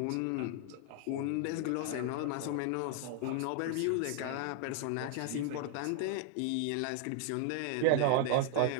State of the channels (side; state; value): both; different; correlation 0.00